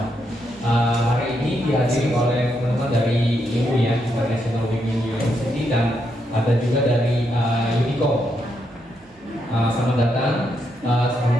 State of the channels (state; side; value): normal; both; correlation 0.80